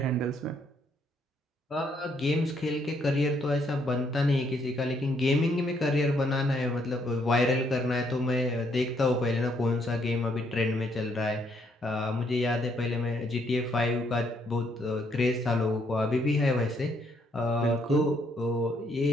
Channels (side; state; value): both; normal; correlation 0.71